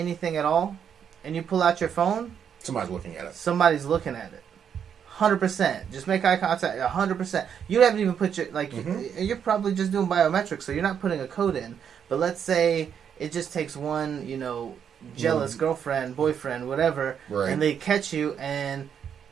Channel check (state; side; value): quieter; left; 8.0 dB